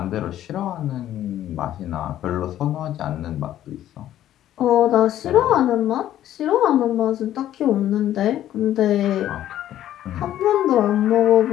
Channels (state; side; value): quieter; right; 12.2 dB